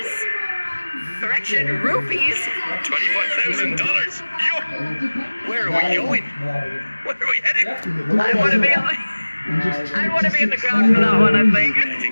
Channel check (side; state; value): both; inverted; correlation -1.00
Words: Correction, rupees. $25,000. Yo, where are we going? Where are we heading? I want to be in the ground for that one, I think. I